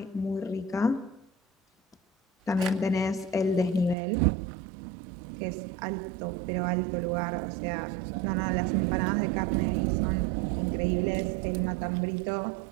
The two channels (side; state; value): left; drops out; at 4.0 s